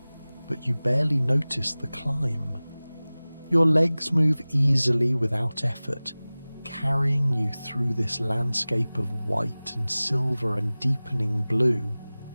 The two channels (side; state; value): both; inverted; correlation -0.99